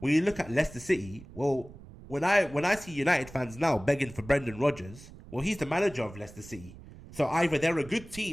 you look at Leicester City, well, when I see United fans now begging for Brendan Rodgers, well, he's the manager of Leicester City. So either they're a good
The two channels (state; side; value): noise; right; rumble, 18 dB below the sound